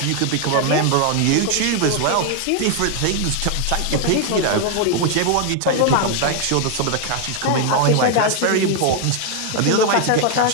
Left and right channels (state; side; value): different; both; correlation 0.01